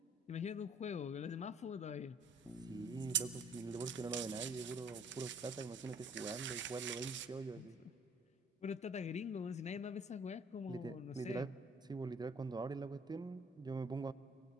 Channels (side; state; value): both; normal; correlation 0.58